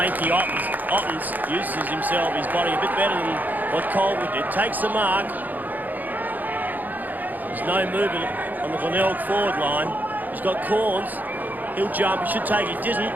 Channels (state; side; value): late; left; 0.084 ms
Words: Ottens uses himself, his body a bit better than what Colville did. Takes the mark. There's no movement on the Glenelg forward line. He's got Corns. He'll jump. He should take it. Didn't.